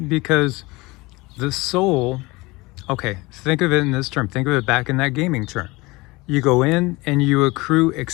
because the soul, okay, think of it in this term, think of it back in that gaming term. You go in and you accrue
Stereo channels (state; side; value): quieter; right; 22.8 dB